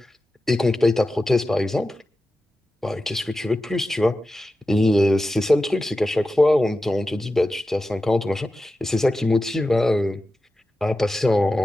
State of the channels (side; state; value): both; normal; correlation 0.93